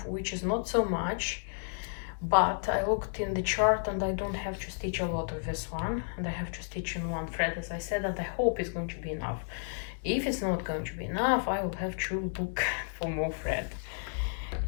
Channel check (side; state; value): right; silent; 56 dB below the other